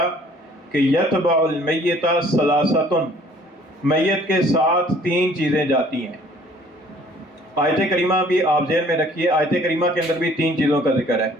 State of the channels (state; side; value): normal; both; correlation 0.56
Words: کہ یتبع المیت ثلاثۃ، میت کے ساتھ تین چیزیں جاتی ہیں۔ آیت کریمہ بھی آپ ذہن میں رکھیے، آیت کریمہ کے اندر بھی تین چیزوں کا ذکر ہے،